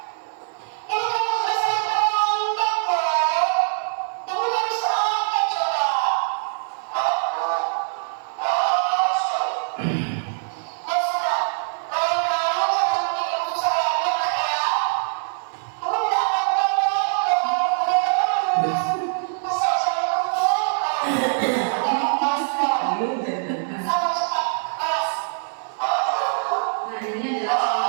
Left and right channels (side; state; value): left; silent; digital silence